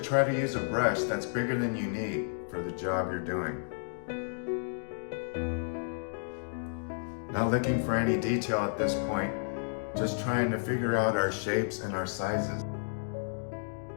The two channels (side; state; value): right; silent; digital silence